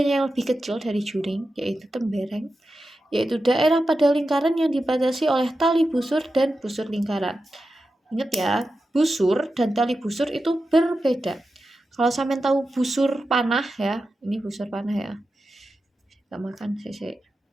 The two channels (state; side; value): normal; both; correlation 0.91